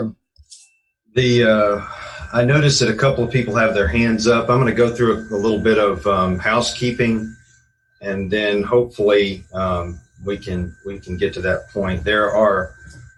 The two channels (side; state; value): both; identical; correlation 1.00